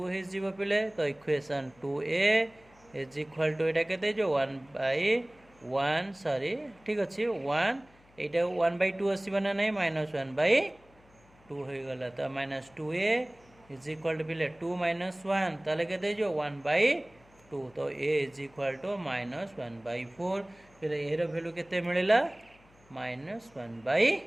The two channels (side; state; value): left; noise; hum, 29 dB below the sound